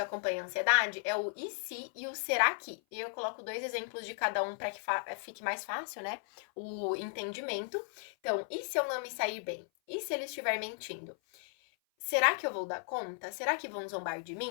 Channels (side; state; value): right; silent; 54 dB below the other